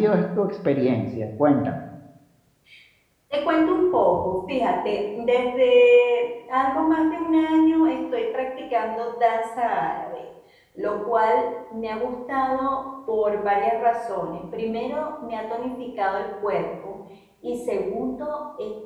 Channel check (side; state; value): both; identical; correlation 1.00